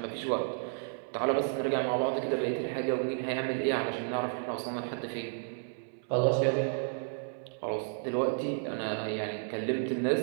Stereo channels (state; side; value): silent; left; 56 dB below the other